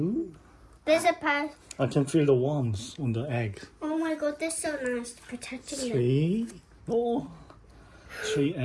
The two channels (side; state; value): both; identical; correlation 1.00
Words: There's a part. I can feel the worms on the egg. Oh my god, they're so nice, protecting them. Three. Oh. 3